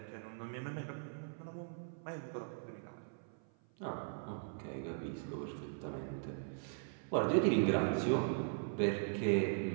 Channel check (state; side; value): silent; left; 51 dB below the other